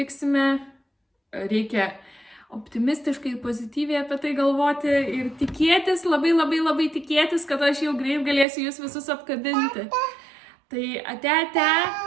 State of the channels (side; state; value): left; drops out; at 8.5 s